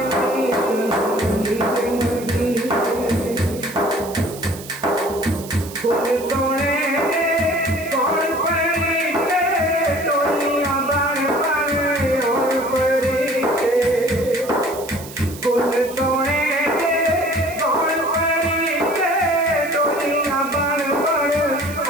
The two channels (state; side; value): noise; right; hiss, 15 dB below the sound